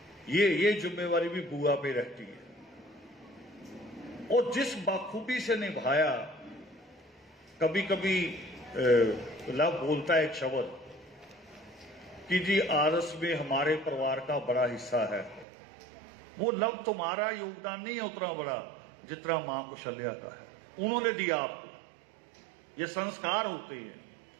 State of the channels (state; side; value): drops out; left; at 15.5 s